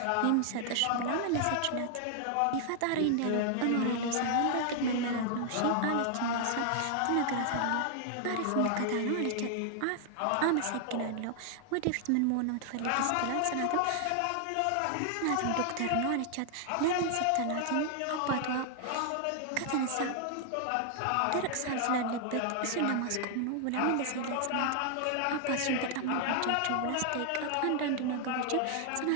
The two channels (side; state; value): both; different; correlation 0.00